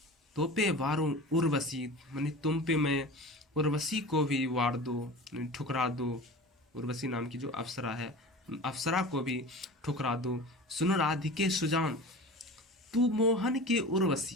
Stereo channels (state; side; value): normal; both; correlation 0.35